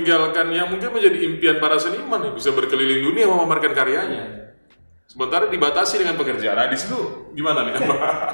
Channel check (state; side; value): inverted; both; correlation -1.00